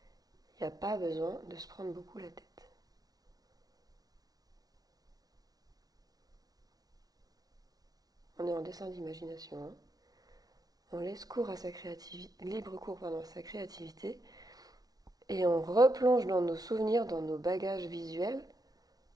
Il n'y a pas besoin de se prendre beaucoup la tête. On est en dessin d'imagination. Hein. On laisse cours à sa créativité, libre cours à sa créativité, et on replonge dans nos souvenirs, dans nos bagages visuels,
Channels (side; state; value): left; late; 0.18 ms